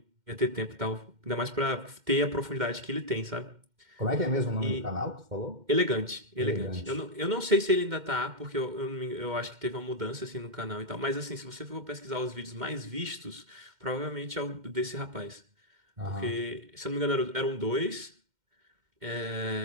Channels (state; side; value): late; left; 2.1 ms